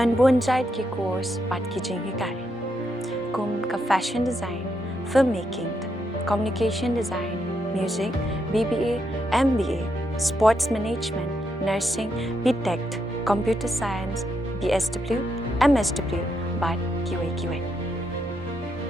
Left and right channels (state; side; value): normal; both; correlation 0.80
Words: bonjait ki course pat ki jingikai. Kum ka fashion design, filmmaking, communication design, music, BBA, MBA, sports management, nursing, BTech, computer science, BSW, MSW, but QA.